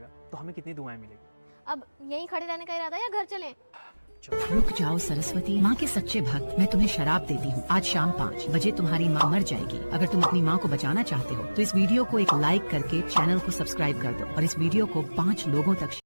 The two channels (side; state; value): both; inverted; correlation -1.00